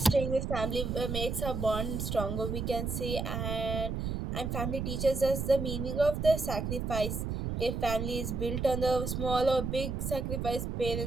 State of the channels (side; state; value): right; noise; rumble, 3 dB below the sound